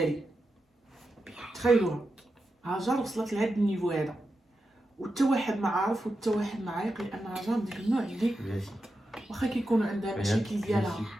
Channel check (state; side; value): normal; both; correlation 0.89